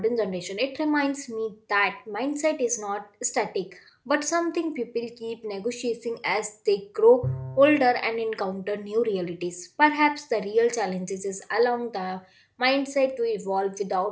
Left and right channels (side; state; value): both; identical; correlation 1.00